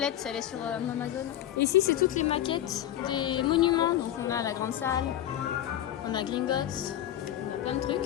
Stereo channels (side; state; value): right; quieter; 12.0 dB